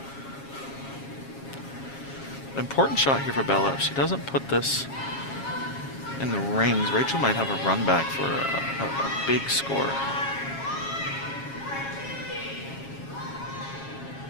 Important shot here for Bella. If she doesn't put this in the rings, Rachel might have a run back for a big score.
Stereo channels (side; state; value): right; late; 7.3 ms